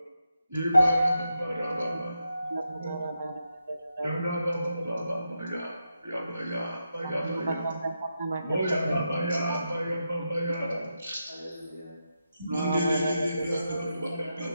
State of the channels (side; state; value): both; inverted; correlation -0.86